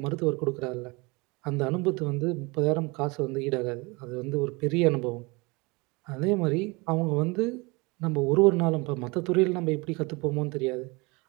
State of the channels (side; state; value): left; quieter; 26.5 dB